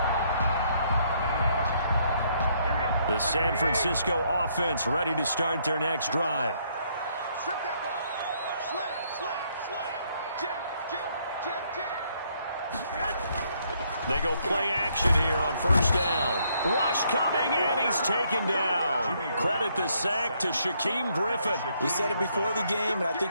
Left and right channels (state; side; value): inverted; both; correlation -0.70